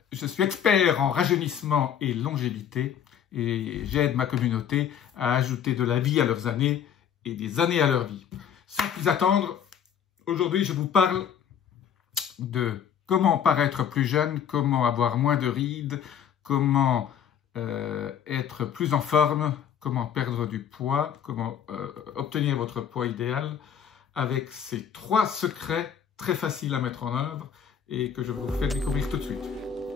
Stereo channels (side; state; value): right; quieter; 8.5 dB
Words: je suis expert en rajeunissement et longévité et j'aide ma communauté à ajouter de la vie à leurs années et des années à leur vie. Sans plus attendre, aujourd'hui je vous parle de comment paraître plus jeune, comment avoir moins de rides, comment être plus en forme, comment perdre du poids, comment obtenir votre poids idéal avec ces 3 secrets très faciles à mettre en œuvre et que je vous fais découvrir tout de suite.